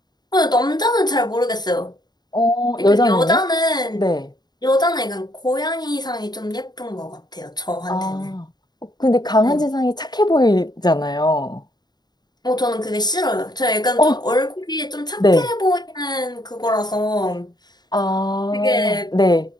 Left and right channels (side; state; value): right; late; 0.20 ms